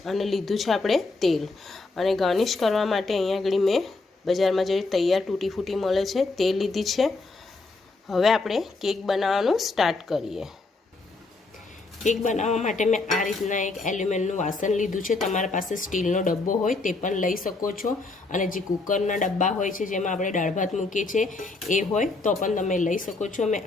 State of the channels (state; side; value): quieter; right; 3.5 dB